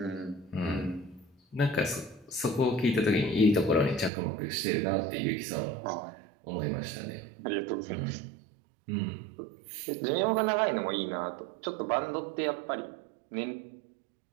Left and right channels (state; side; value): drops out; left; at 4.1 s